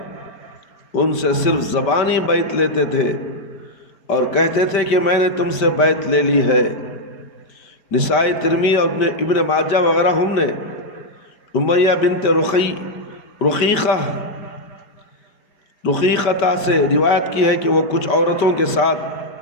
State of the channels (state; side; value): late; right; 5.2 ms